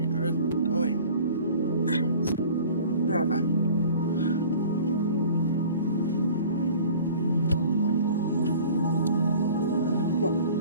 are going. Grab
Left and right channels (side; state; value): both; inverted; correlation -0.46